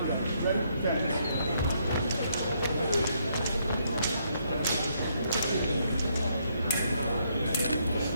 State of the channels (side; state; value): both; inverted; correlation -0.73